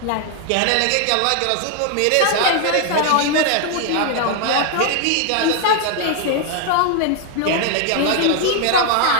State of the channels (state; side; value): different; both; correlation 0.00